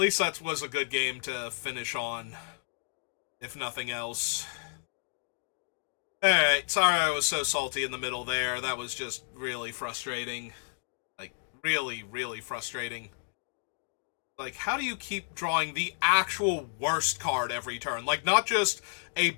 that was a good game to finish on, if nothing else. Alright, sorry I was so salty in the middle there. That was just really frustrating. Like, really, really frustrating. Like, how do you keep drawing the actual worst card every turn? Like, not just a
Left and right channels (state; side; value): silent; right; digital silence